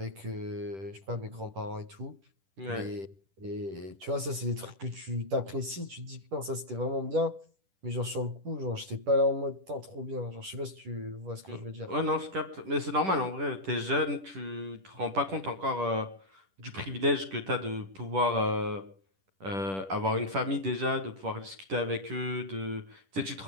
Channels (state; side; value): late; left; 10 ms